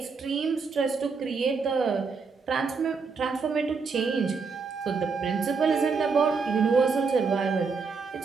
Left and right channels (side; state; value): left; quieter; 5.0 dB